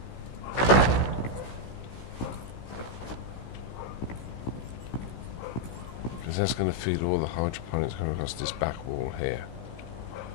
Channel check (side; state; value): right; late; 16 ms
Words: that's going to feed all the hydroponics coming across this back wall here.